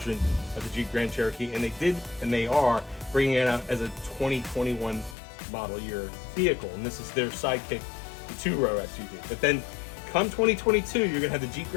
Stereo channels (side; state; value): right; drops out; at 5.2 s